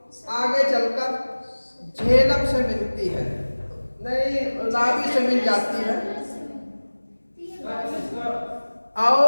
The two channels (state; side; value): inverted; both; correlation -1.00